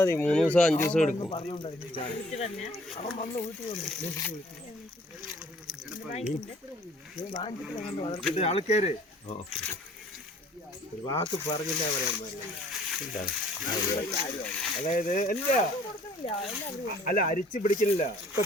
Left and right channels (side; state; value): both; normal; correlation 0.56